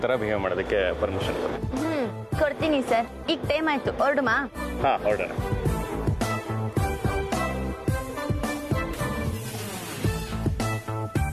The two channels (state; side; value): identical; both; correlation 1.00